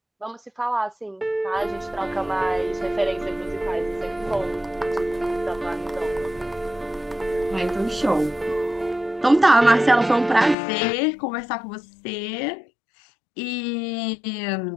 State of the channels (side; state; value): right; drops out; at 10.6 s